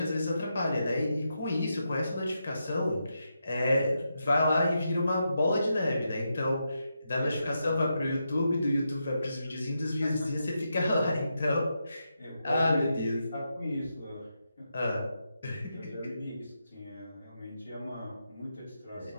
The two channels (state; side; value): inverted; both; correlation -0.85